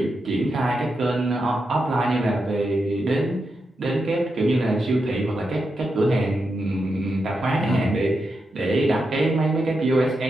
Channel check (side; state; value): both; normal; correlation 0.86